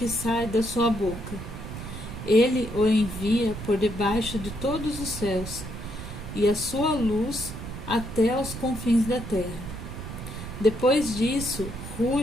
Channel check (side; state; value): right; noise; rumble, 9 dB below the sound